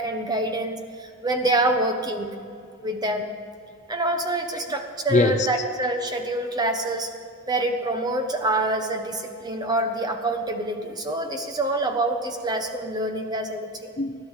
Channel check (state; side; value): normal; both; correlation 0.25